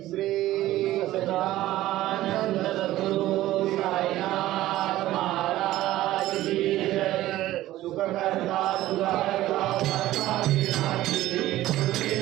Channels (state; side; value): quieter; left; 15.3 dB